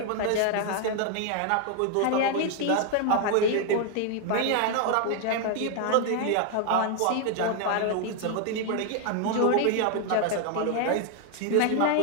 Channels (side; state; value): both; different; correlation 0.00